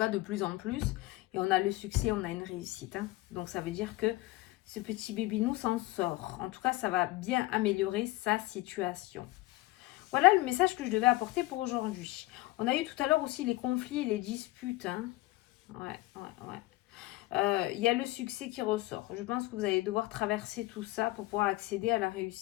de plus en plus. Et on a le succès, on a une réussite. Hein. Donc, ça veut dire que ce petit bébinou s'en sort. En tout cas, ça va bien améliorer sa situation. Voilà le message que je devais apporter pour aujourd'hui. On a eu tout à l'heure aussi les conflits et les disputes. Hein. Ouais. Il y a le succès qui ressort. Je pense que vous allez devoir traverser tout ça pour pouvoir accéder à la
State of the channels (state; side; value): quieter; right; 18.8 dB